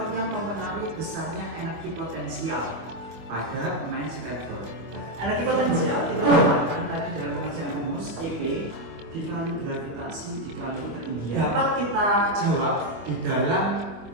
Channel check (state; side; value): late; left; 25 ms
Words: yang mempengaruhi besarnya energi potensial pada pemain skateboard. Energi potensial kita dapatkan tadi dalam pengerjaan rumus EP dikali gravitasi dikali ketinggian. Dapat kita jawab di